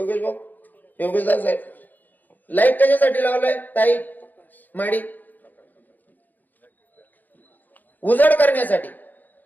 भाऊ, योगेश दास साहेब, लाईट कशासाठी लावलाय ताई माडी, उजड करण्यासाठी,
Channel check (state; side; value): late; right; 0.084 ms